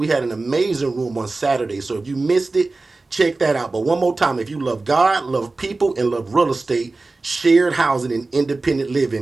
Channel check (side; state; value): left; quieter; 3.4 dB